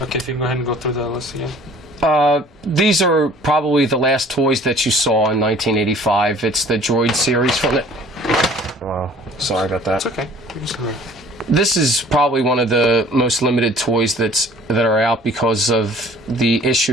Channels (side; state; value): both; normal; correlation 0.51